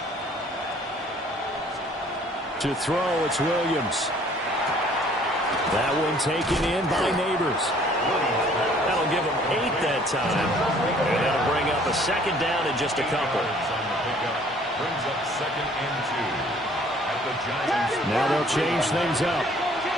To throw, it's Williams. That one taken in by Neighbors. That'll give them 8 that time. And that'll bring up a second down in just a couple. Brings up second and 2 at the Giants. Now they'll change things up.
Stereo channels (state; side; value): normal; both; correlation 0.57